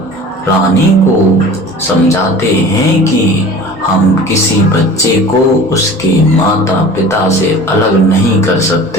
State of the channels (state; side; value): normal; both; correlation 0.41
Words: रानी को समझाते हैं कि हम किसी बच्चे को उसके माता पिता से अलग नहीं कर